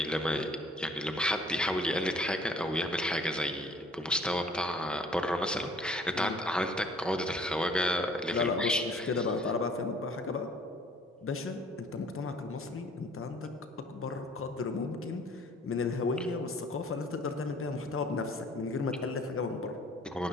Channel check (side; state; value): both; normal; correlation 0.55